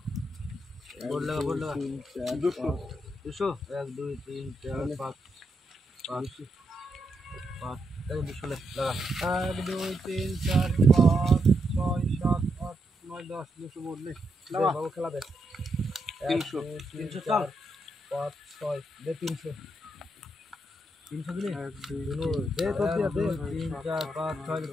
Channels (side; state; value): both; normal; correlation 0.81